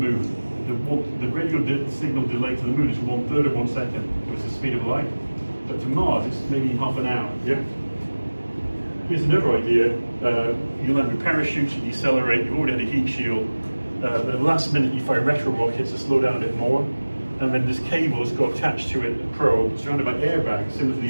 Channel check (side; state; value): both; inverted; correlation -1.00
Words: The radio signal delay to the moon is 1/3 of 1 second, so it's the speed of light. But to Mars, it's maybe half an hour. Yeah. Here's another idea. You land with parachutes, you decelerate. You've already had a heat shield. But at the last minute, you fire retro rockets to slow down a bit more. and then this cable has got attached to it, a probe, surrounded by airbags, similar to the